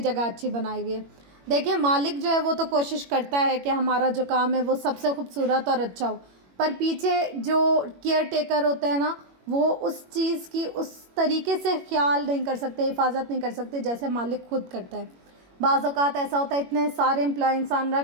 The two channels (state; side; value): late; left; 21 ms